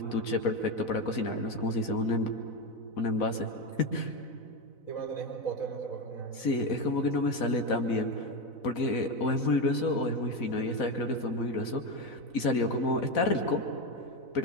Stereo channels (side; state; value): right; late; 4.0 ms